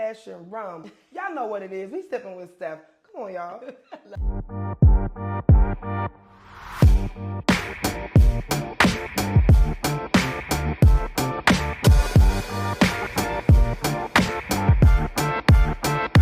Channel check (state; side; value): identical; both; correlation 1.00